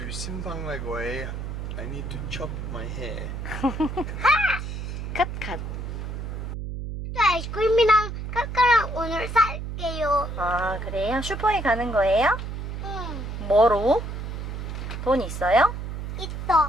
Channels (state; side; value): noise; right; hum, 6 dB below the sound